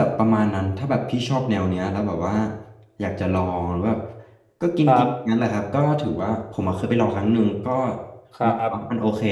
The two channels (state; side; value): identical; both; correlation 1.00